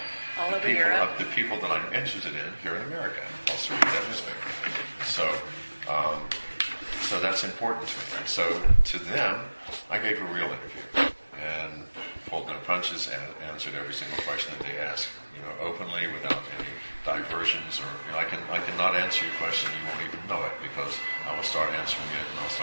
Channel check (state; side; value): inverted; both; correlation -1.00